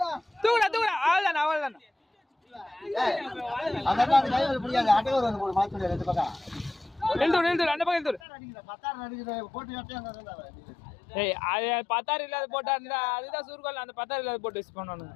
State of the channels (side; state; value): right; drops out; at 8.2 s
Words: தூக்குடா தூக்குடா அவ்வளோதானே அவ்வளோதானே அதெல்லாம் அந்த கை வலி பிடிக்காது அட்டைவர் வந்து போடு மாத்தி ரெண்டு பக்கம் எழுதுடு அந்த பக்கம் எழுதுடு பத்தாயிரம் அடிக்கிற போட்டு கட்டியா ஏய் அது 10,000 இல்லாத போட்டா இருந்தா அதுதான் சுருக்கல் அந்த 10,000 இல்லாத போட்டு யூஸ் பண்ணணும்